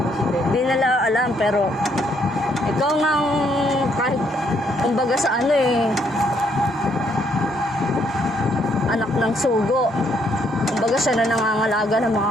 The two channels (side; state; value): both; normal; correlation 0.71